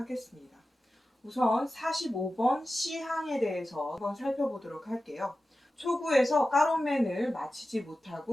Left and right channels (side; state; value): both; normal; correlation 0.94